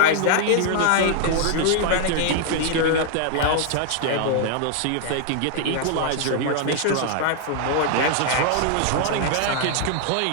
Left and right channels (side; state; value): both; different; correlation 0.00